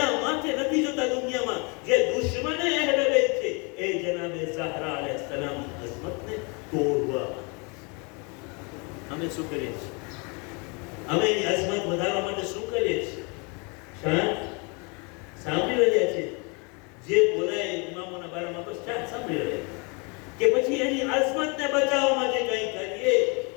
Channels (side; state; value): right; quieter; 31.9 dB